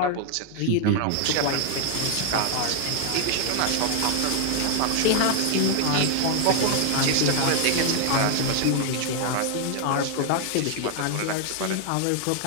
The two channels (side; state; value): both; different; correlation 0.00